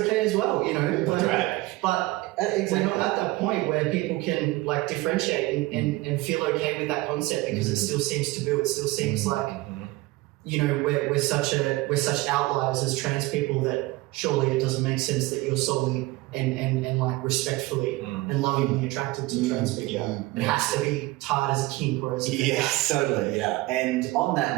as well, That's right. But we're not at that point where people can like differentiate and feel okay with that concept, because it still seems taboo. It still seems like, we're such outliers as trans people that surely it doesn't make sense that you're solely and like respectfully and lovingly attracted to trans people. Yeah. It has to be tied as a kink or as a Yes, totally. Yeah. And on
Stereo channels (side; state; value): left; quieter; 20.0 dB